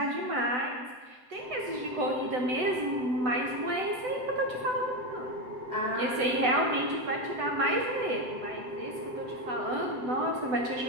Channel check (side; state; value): left; late; 7.9 ms